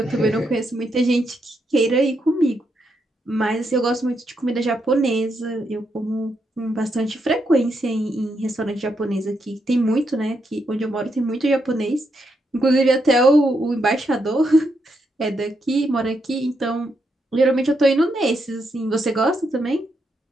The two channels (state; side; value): normal; both; correlation 0.80